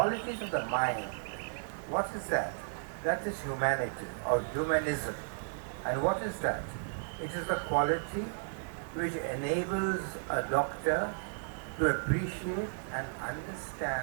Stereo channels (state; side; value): silent; left; 55 dB below the other